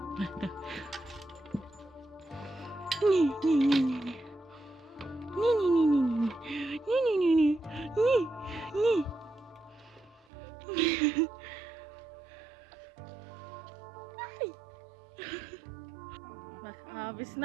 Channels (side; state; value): left; drops out; at 10.2 s